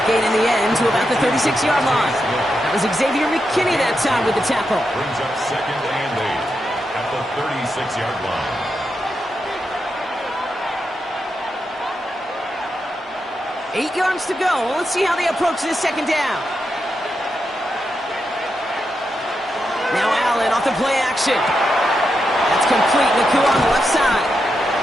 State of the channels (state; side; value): normal; both; correlation 0.85